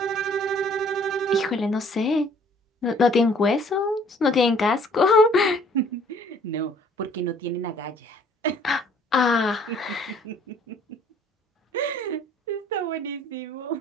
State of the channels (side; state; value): both; normal; correlation 0.58